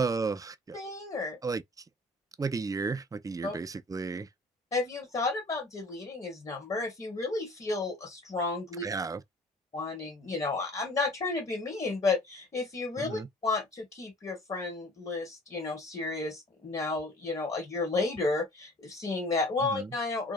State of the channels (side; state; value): both; normal; correlation 0.49